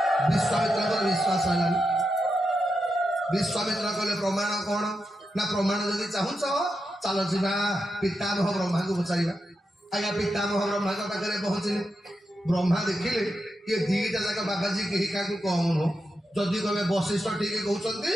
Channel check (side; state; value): both; normal; correlation 0.87